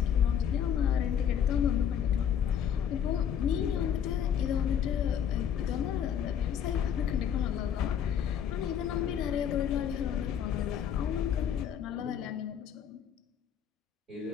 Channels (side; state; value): right; quieter; 8.7 dB